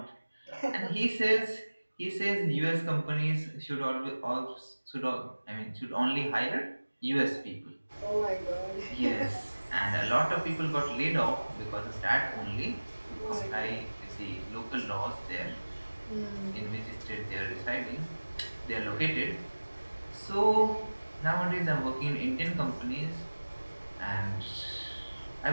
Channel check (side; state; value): both; inverted; correlation -1.00